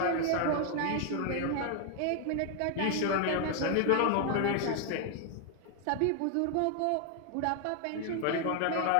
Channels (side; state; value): both; different; correlation 0.00